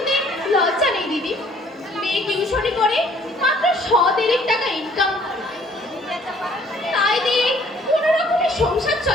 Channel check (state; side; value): normal; both; correlation 0.58